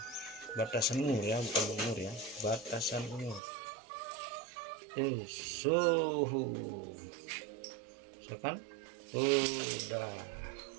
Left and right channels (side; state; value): left; drops out; at 3.4 s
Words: batasan umur ya, bukan umur ya, batasan umur. Suhu. Misalkan udah.